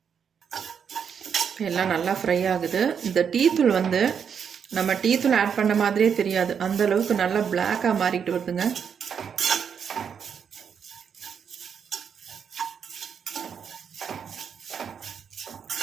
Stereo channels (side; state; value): left; quieter; 7.2 dB